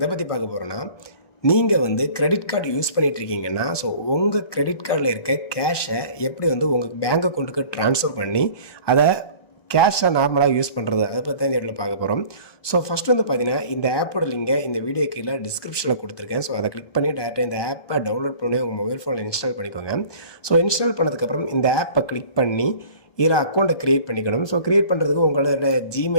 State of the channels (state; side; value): late; right; 1.2 ms